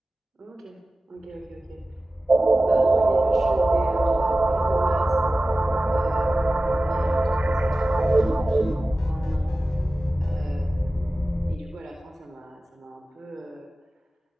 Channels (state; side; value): normal; both; correlation 0.96